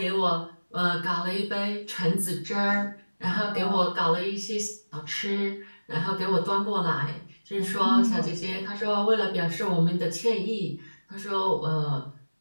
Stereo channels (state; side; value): inverted; both; correlation -1.00